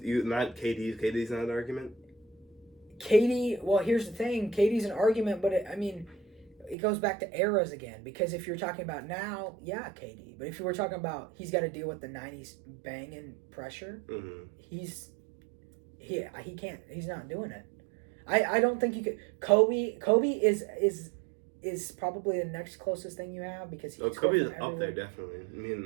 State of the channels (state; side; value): drops out; left; at 6.8 s